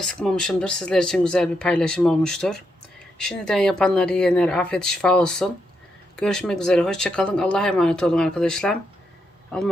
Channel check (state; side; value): normal; both; correlation 0.81